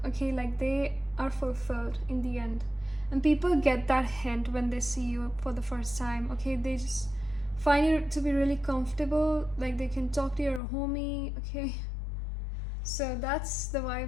Okay, like they are fulfilled in the end, and people get that hint when they see you for the first time. Okay, they just find you to be really comfortable, like they can talk to your homie. Okay, so that's the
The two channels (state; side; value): drops out; right; at 10.6 s